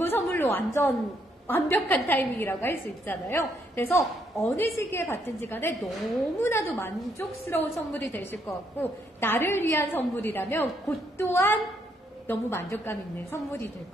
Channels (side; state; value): both; normal; correlation 0.73